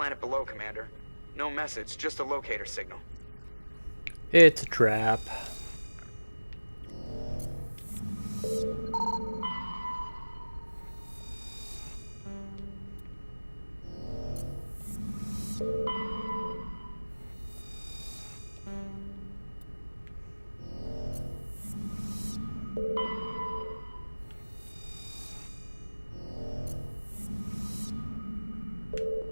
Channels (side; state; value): both; inverted; correlation -1.00